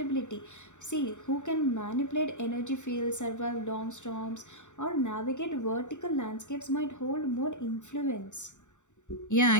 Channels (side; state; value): right; late; 0.84 ms